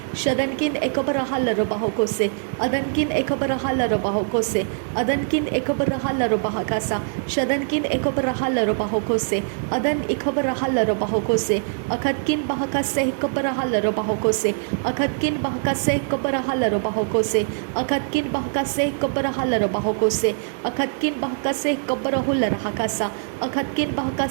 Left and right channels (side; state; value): left; silent; 63 dB below the other